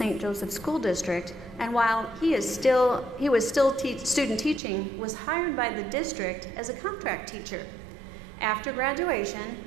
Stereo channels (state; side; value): drops out; left; at 4.6 s